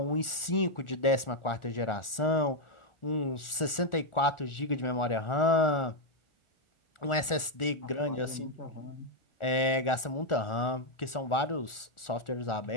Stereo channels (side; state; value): right; late; 1.4 ms